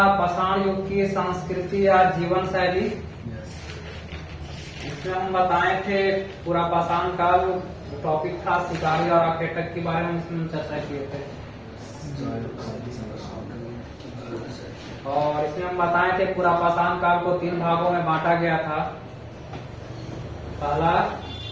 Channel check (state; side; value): identical; both; correlation 1.00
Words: पाषाण युग की संस्कृति या जीवन शैली। इसमें हम बताए थे पूरा पाषाण काल टॉपिक था शिकारी और आखेटक के बारे में इसमें चर्चा किए थे। और इसमें हम बताए थे पूरा पाषाण काल को 3 भागों में बांटा गया था। पहला